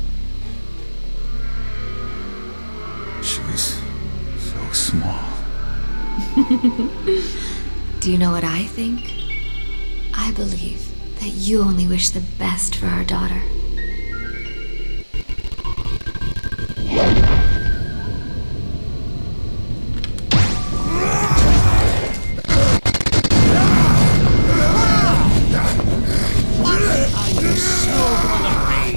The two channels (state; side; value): inverted; both; correlation -1.00